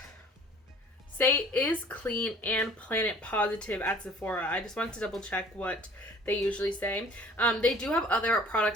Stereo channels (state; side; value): normal; both; correlation 0.51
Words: Saie is clean and planet positive at Sephora. I just wanted to double check what they usually say. They do have other